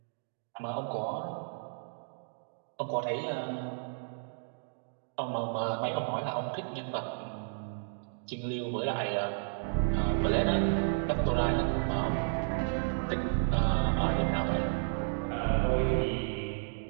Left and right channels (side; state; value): left; silent; digital silence